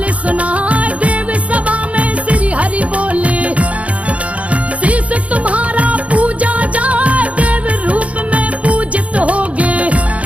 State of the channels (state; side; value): late; left; 0.065 ms